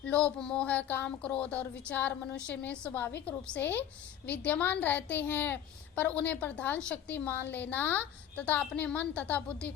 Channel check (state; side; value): quieter; right; 10.2 dB